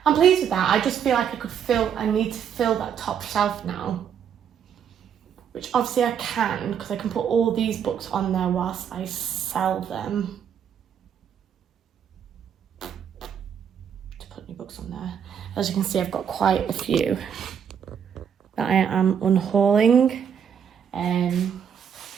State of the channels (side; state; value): left; quieter; 8.1 dB